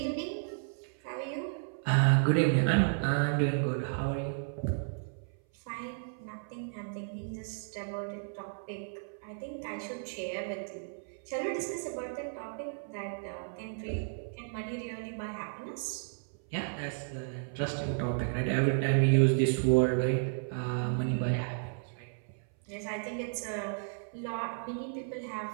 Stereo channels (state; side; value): silent; left; 56 dB below the other